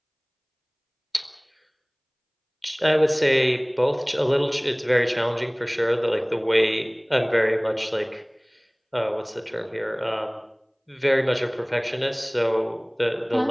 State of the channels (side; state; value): both; identical; correlation 1.00